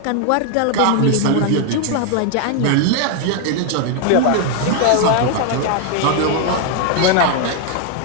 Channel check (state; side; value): different; both; correlation 0.00